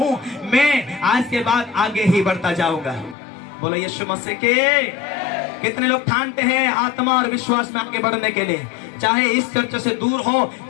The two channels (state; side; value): drops out; right; at 3.2 s